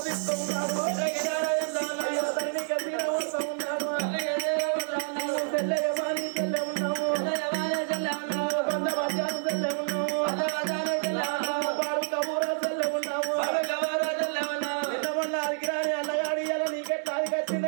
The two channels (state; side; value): silent; left; digital silence